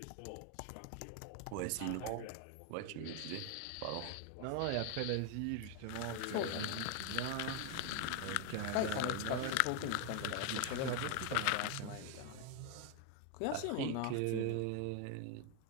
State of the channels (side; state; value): both; different; correlation 0.01